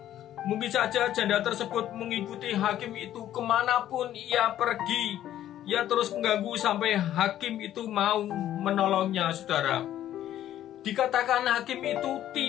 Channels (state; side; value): quieter; right; 12.1 dB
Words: Mungkin saja janda tersebut mengikuti hakim itu kemanapun ia pergi. Ia terus mengganggu sampai hakim itu mau menolongnya, saudara. Dikatakan hakim itu